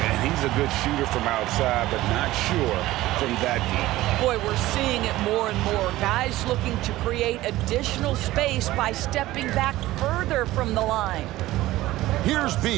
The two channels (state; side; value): quieter; left; 16.7 dB